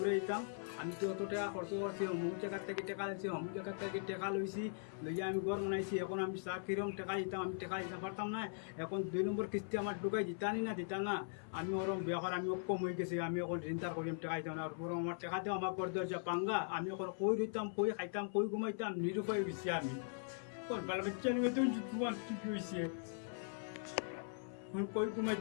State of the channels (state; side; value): silent; right; 51 dB below the other